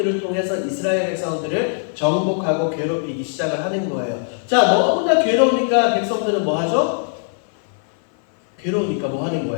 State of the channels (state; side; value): silent; right; 58 dB below the other